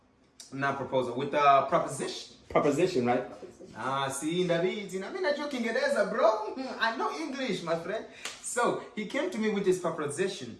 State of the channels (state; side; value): identical; both; correlation 1.00